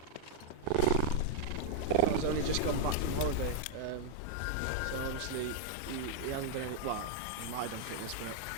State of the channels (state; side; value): different; both; correlation -0.01